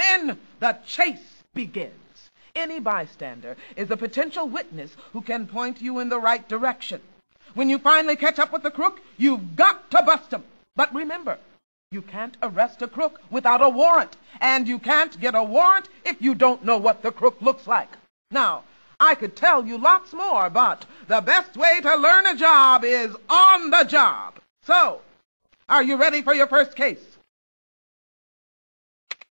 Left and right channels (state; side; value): inverted; both; correlation -1.00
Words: the chase begins. Any bystander is a potential witness who can point you in the right direction. When you finally catch up with the crook, you've got to bust him. But remember, you can't arrest a crook without a warrant, and you can't get a warrant if you don't know what the crook looks like. Now, I could tell you lots more, but the best way to learn a job is on the job. So, are you ready for your first case?